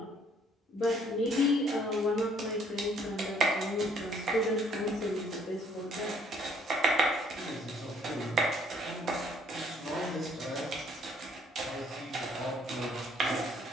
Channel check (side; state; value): both; normal; correlation 0.62